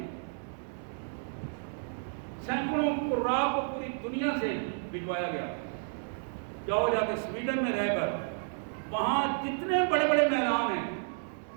سینکڑوں قراء کو پوری دنیا سے بھجوایا گیا۔ جاؤ جا کے سویڈن میں رہ کر وہاں جتنے بڑے بڑے میدان ہیں،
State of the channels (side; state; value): left; silent; digital silence